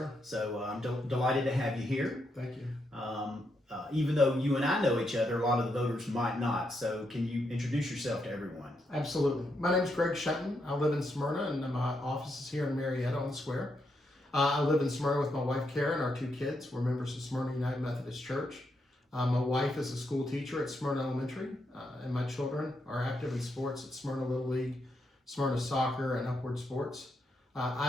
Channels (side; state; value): both; normal; correlation 0.81